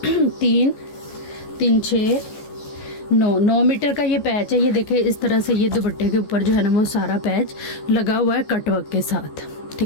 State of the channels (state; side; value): late; right; 14 ms